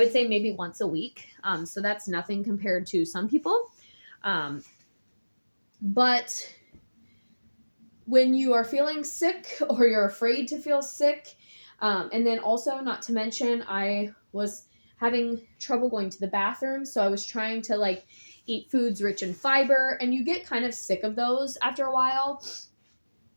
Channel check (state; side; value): inverted; both; correlation -1.00